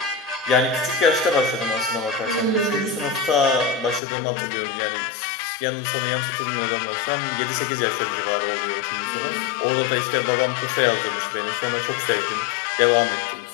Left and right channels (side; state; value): right; drops out; at 4.0 s